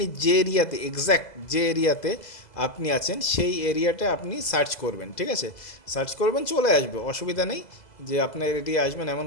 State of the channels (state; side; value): late; right; 2.0 ms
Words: যে এরিয়াতে এক্স্যাক্ট যে এরিয়াতে আপনি আছেন সেই এরিয়াটা আপনি সার্চ করবেন। ঠিক আছে, সার্চ করবেন, চলে আসবে, অসুবিধা নেই যে আপনার এরিয়া আসবেন এমন